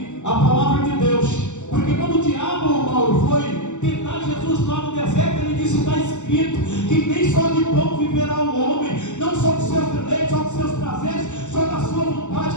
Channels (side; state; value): right; late; 0.84 ms